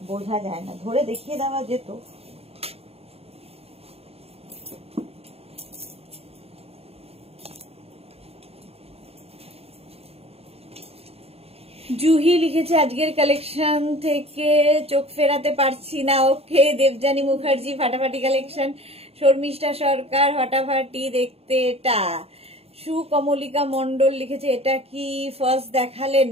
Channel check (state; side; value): late; left; 0.29 ms